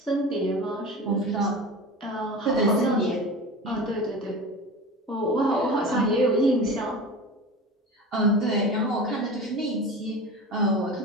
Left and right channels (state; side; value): normal; both; correlation 0.32